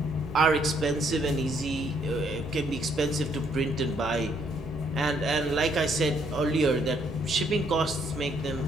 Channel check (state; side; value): normal; both; correlation 0.69